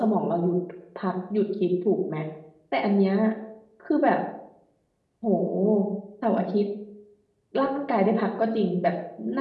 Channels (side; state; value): both; identical; correlation 1.00